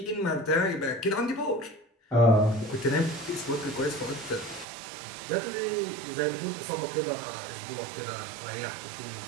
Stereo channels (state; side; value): drops out; left; at 4.7 s